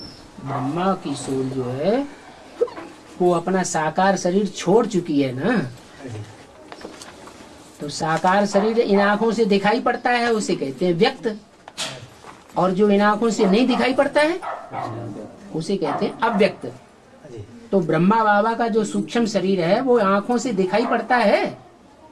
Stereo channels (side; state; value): both; identical; correlation 1.00